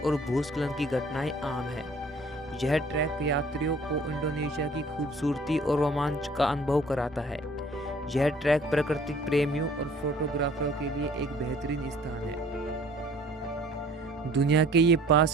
और भूस्खलन की घटनाएं आम हैं। यह ट्रैक यात्रियों को इंडोनेशिया की खूबसूरती और रोमांच का अनुभव कराता है। यह ट्रैक प्राकृतिक प्रेमियों और फोटोग्राफरों के लिए एक बेहतरीन स्थान है। दुनिया के ये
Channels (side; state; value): both; normal; correlation 0.54